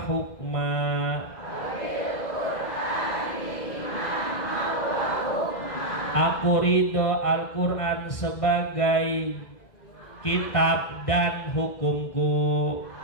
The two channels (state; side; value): late; right; 2.0 ms